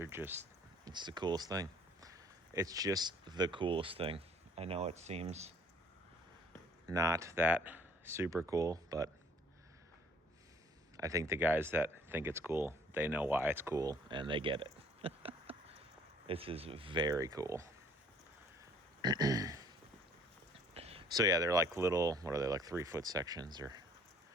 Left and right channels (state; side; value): normal; both; correlation 0.57